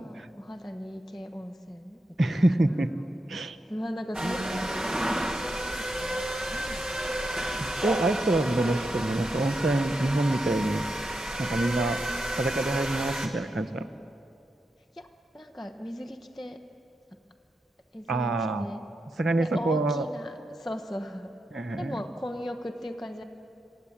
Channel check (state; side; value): normal; both; correlation 0.86